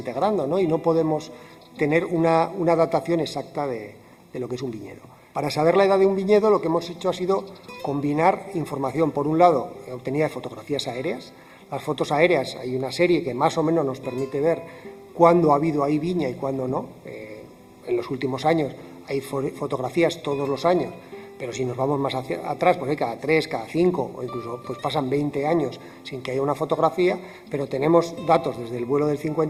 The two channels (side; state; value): both; identical; correlation 1.00